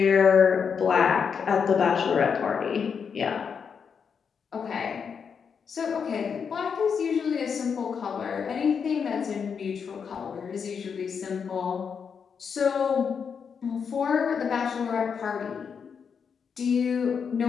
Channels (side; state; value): right; quieter; 6.5 dB